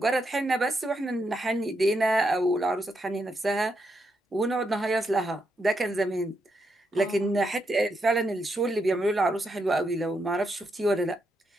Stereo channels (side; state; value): both; normal; correlation 0.81